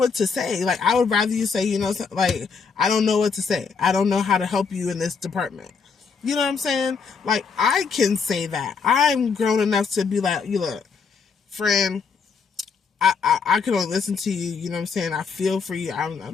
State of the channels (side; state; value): right; quieter; 5.5 dB